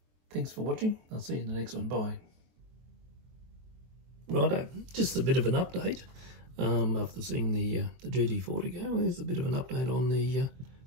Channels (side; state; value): left; late; 23 ms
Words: thanks for watching. I'll see you in the next one. Bye. Righto, just a bit of an update. After seeing the GT40 go, there's a bit of an update on the